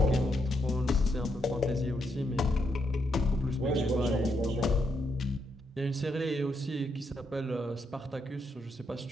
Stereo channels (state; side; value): normal; both; correlation 0.79